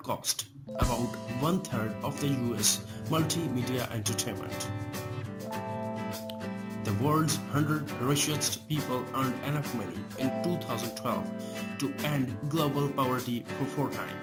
about 1/3 of the US multimedia entertainment. The world's 100 richest people earned enough money in 2012 to end global poverty for 4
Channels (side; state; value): both; identical; correlation 1.00